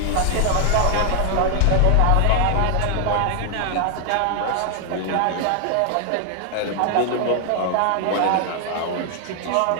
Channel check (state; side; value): different; both; correlation 0.00